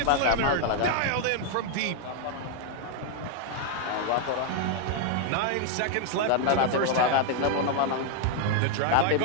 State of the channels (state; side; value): different; both; correlation 0.00